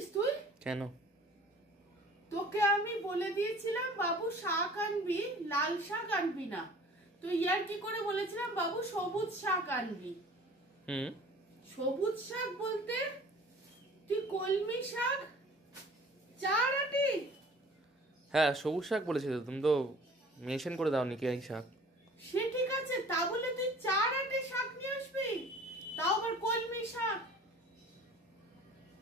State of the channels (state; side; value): normal; both; correlation 0.48